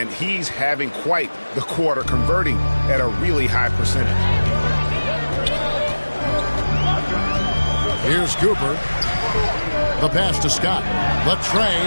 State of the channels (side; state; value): both; inverted; correlation -1.00